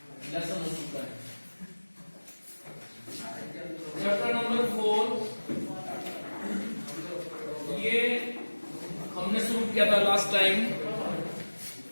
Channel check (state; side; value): inverted; both; correlation -1.00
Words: लेसन हो चुका है। चैप्टर नंबर 4 ये हमने शुरू किया था लास्ट टाइम,